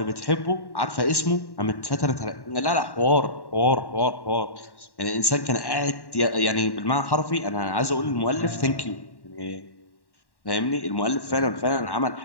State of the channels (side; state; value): right; late; 1.1 ms